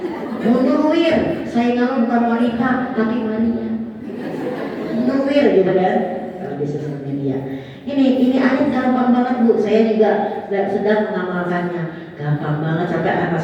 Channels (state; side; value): identical; both; correlation 1.00